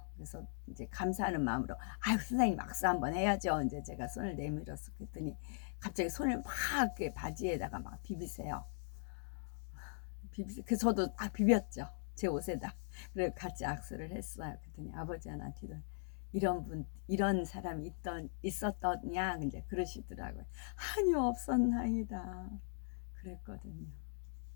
그래서 이제 감사하는 마음으로 아유 선생님 악수 한번 해야죠. 이제 제가 손을 내밀었어. 그랬더니 갑자기 손을 막 이렇게 바지에다가 막 비비세요. 그 저도 비볐죠. 제 옷에다. 그래 같이 악수를 했어요. 그랬더니 아버지 하나 뒤로 이런 사람이 있었더냐 이제 그러시더라고요. 아니요 없었나이다. 그랬거든요.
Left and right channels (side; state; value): right; silent; digital silence